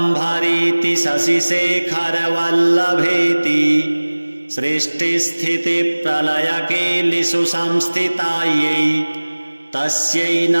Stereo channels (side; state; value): both; inverted; correlation -1.00